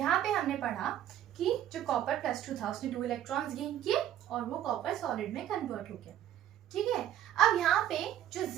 पे हमने पढ़ा कि जो कॉपर प्लस 2 था उसने 2 इलेक्ट्रॉन्स गेन किए और वो कॉपर सॉलिड में कन्वर्ट हो गया। ठीक है, अब यहाँ पे जो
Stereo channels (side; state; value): left; quieter; 11.5 dB